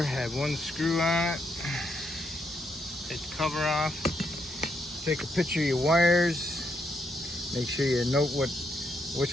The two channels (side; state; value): both; normal; correlation 0.78